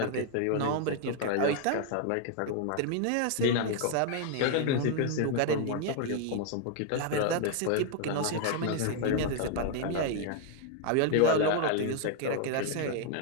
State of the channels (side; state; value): both; different; correlation 0.00